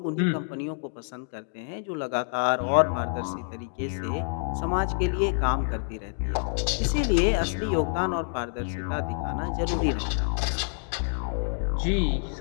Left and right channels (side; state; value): right; silent; 60 dB below the other